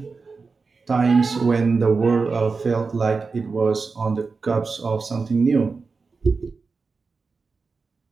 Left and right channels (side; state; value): left; quieter; 4.5 dB